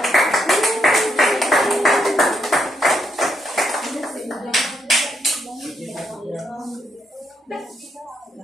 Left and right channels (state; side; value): normal; both; correlation 0.77